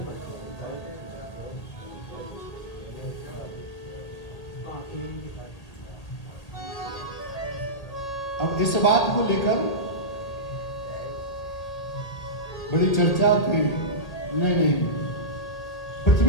अब इस बात को लेकर बड़ी चर्चा की। नहीं,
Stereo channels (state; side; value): late; right; 1.8 ms